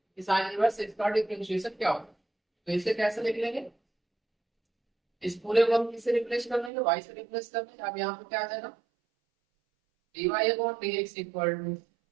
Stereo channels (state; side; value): drops out; left; at 6.7 s